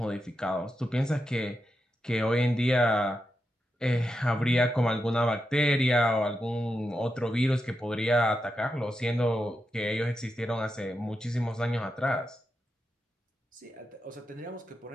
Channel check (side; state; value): both; normal; correlation 0.87